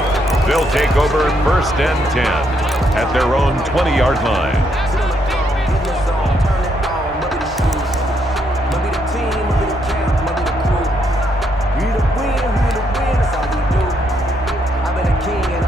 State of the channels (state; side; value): normal; both; correlation 0.75